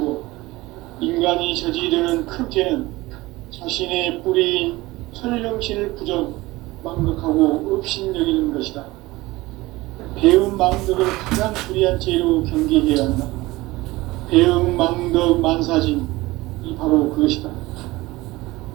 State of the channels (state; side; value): quieter; left; 19.9 dB